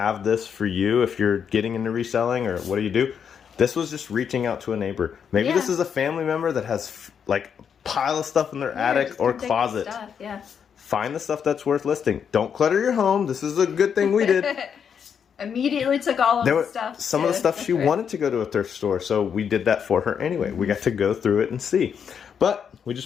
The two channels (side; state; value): right; quieter; 7.4 dB